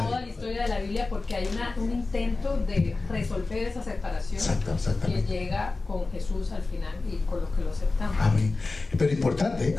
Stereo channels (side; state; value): right; quieter; 3.6 dB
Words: la historia de la Biblia, porque hay un intento de resolver esa separación que llega con Jesús al final y con los que lo aceptamos. Amén. Pero importante